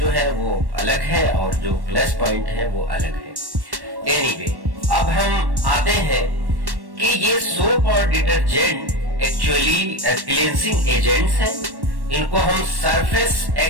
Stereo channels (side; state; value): left; late; 1.1 ms